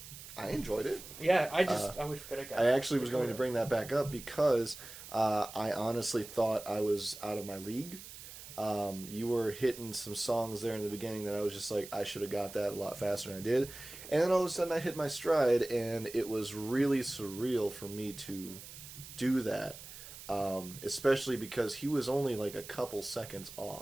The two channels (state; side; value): noise; right; hiss, 14 dB below the sound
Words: I enjoyed it. Yeah, I wish I got. I actually was going to bring that back up because I honestly thought I was out of my league. You were hitting some songs there in the beginning that I was just like, I should have got that a lot faster than I did. And then all of a sudden I hit my stride, and it was really surreal for me to do that. Especially because he was only like a couple seconds